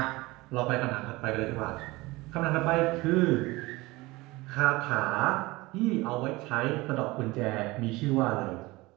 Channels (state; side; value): quieter; left; 21.4 dB